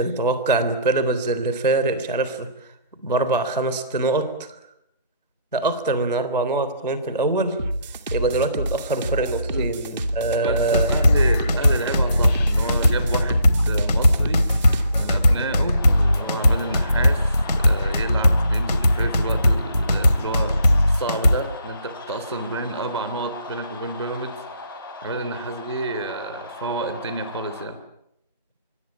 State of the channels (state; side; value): inverted; both; correlation -0.66